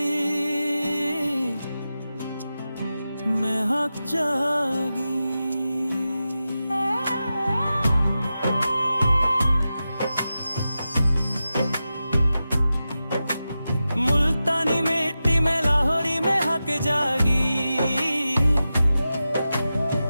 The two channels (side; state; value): both; inverted; correlation -0.92